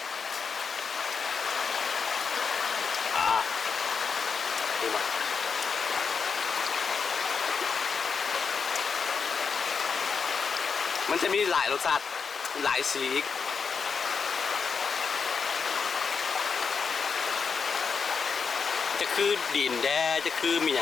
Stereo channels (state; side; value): quieter; right; 5.7 dB